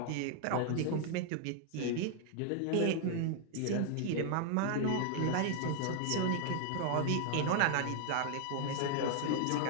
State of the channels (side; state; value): both; different; correlation 0.00